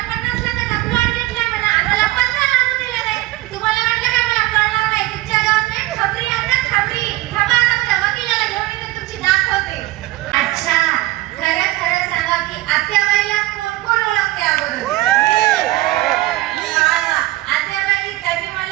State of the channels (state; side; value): quieter; left; 18.0 dB